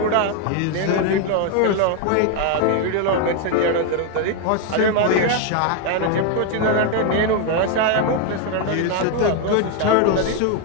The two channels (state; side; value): different; both; correlation 0.01